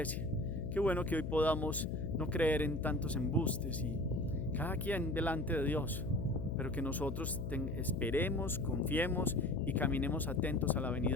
Qué bueno que hoy podamos no creer en tantos embustes y cada quien delante de Dios, pero que nosotros esperemos, confiemos y caminemos atentos a la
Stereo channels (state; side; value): noise; left; hum, 4 dB below the sound